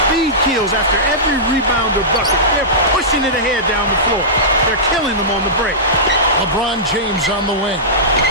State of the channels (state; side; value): normal; both; correlation -0.17